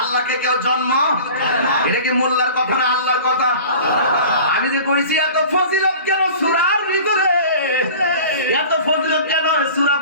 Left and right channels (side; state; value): both; inverted; correlation -0.41